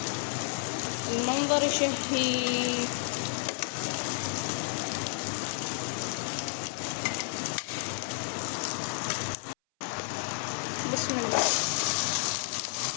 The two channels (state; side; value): silent; right; 57 dB below the other